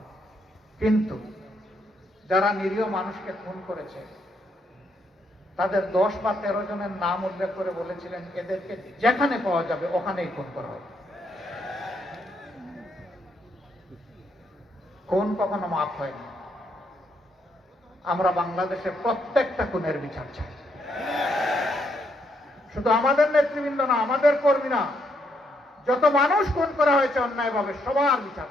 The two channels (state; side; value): normal; both; correlation 0.76